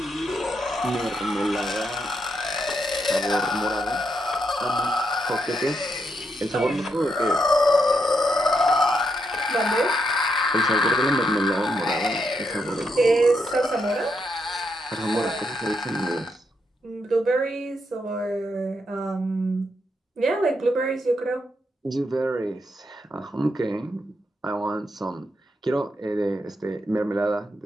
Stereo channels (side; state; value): both; normal; correlation 0.80